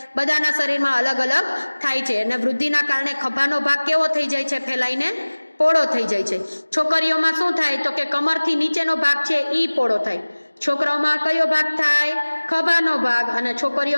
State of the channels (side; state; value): both; inverted; correlation -1.00